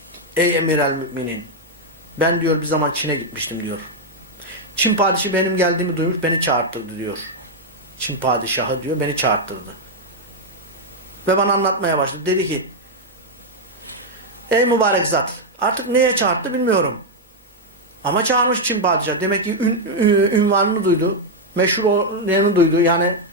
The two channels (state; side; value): normal; both; correlation 0.00